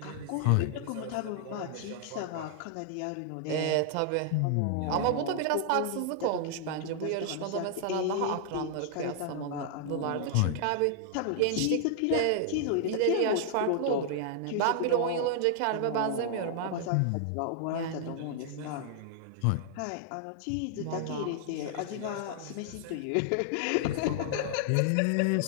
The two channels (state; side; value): different; both; correlation 0.00